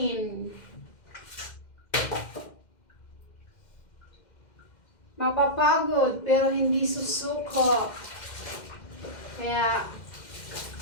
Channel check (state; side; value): late; right; 2.1 ms